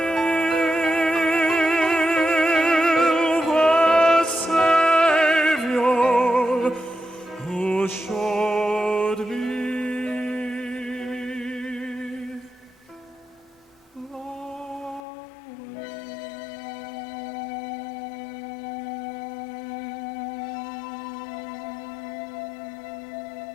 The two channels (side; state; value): right; drops out; at 15.0 s